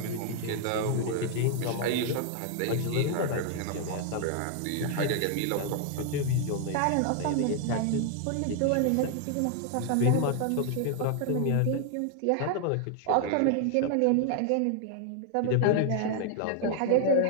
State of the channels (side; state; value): both; different; correlation 0.00